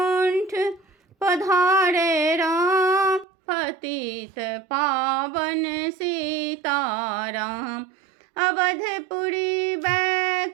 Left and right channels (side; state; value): left; drops out; at 3.2 s